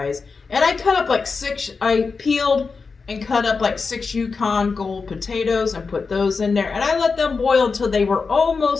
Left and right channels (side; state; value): right; quieter; 4.7 dB